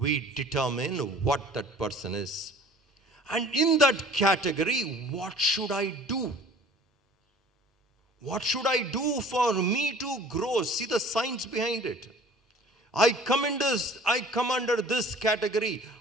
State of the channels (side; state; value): both; normal; correlation 0.48